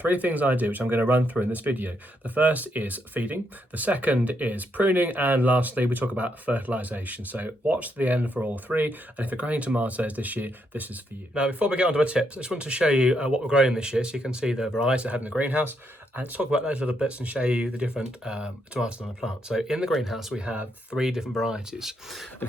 things I do, which I'm going to run through in this video. The first is feeding, the second is pruning, and lastly we talk about fertilisation. So watch to the end for all three, and if you're growing tomatoes this year, this is for you. Now before we get on to our tips, I just want to show you what we're growing this year so you can see the varieties I have in the greenhouse, and let's talk about those little bits and show you the different tomatoes on the plant. So in the greenhouse we have three different varieties, and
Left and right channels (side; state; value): both; normal; correlation 0.78